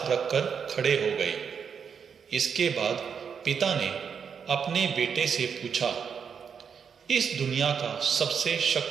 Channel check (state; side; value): quieter; left; 6.8 dB